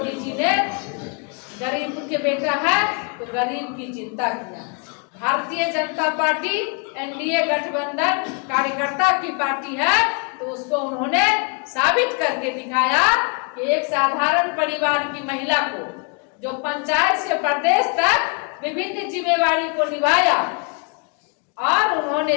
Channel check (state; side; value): quieter; right; 36.1 dB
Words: जी ने गरीब के बेटा है तो गरीब की चिंता किया। भारतीय जनता पार्टी एनडीए गठबंधन कार्यकर्ता की पार्टी है, तो उसको उन्होंने साबित करके दिखाया कि एक साधारण परिवार की महिला को जो पंचायत से प्रदेश तक विभिन्न जिम्मेवारी को निभाया और